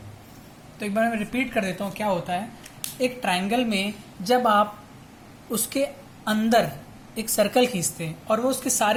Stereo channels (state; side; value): identical; both; correlation 1.00